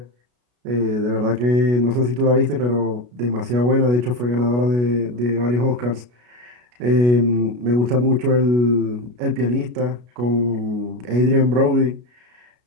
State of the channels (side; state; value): left; late; 33 ms